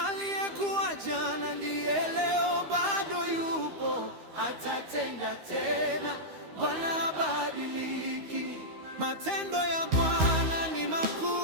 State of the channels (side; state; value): left; late; 13 ms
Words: Aliyekuwa jana ndiye leo, bado yupo, atatenda tena. Bwana habadiliki. Matendo ya Bwana ni